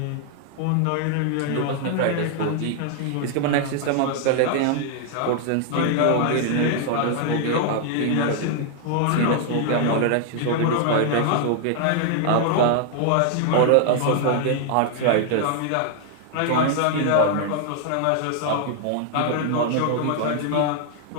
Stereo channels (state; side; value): different; both; correlation 0.00